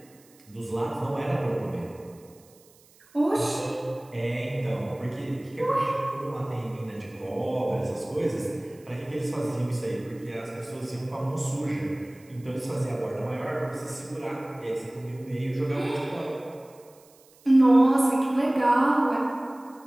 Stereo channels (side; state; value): right; noise; hiss, 28 dB below the sound